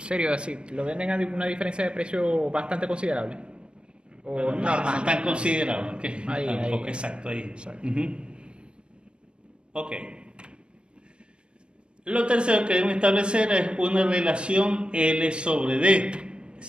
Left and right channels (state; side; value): late; left; 0.055 ms